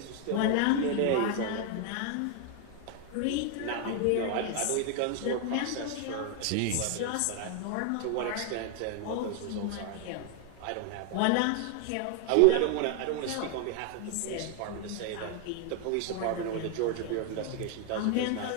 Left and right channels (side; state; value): both; different; correlation 0.00